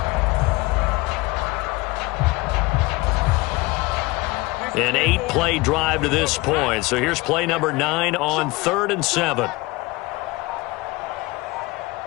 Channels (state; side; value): quieter; right; 22.3 dB